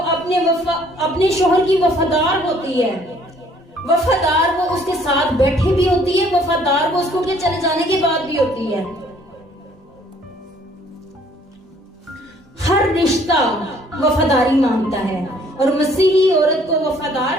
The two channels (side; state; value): both; normal; correlation 0.60